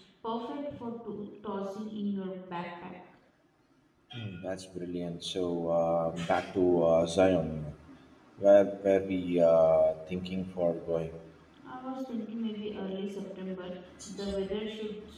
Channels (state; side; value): identical; both; correlation 1.00